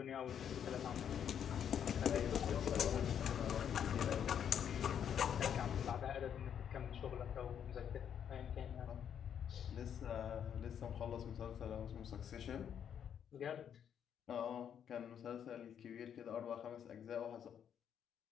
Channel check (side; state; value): right; quieter; 8.7 dB